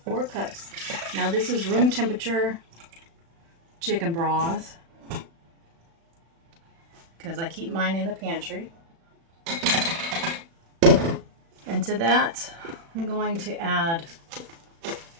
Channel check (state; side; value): late; left; 36 ms